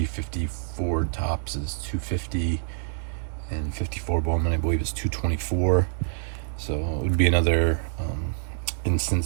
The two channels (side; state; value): left; silent; digital silence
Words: 54 Topps is 250, and 54 Bowman, I believe, is 224. So it would be another